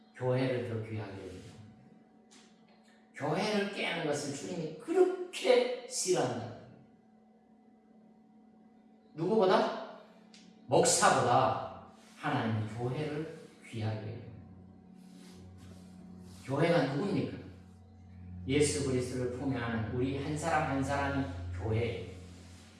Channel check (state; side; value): identical; both; correlation 1.00